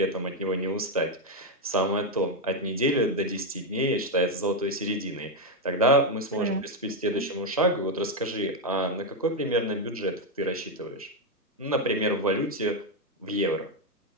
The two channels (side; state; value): both; normal; correlation 0.05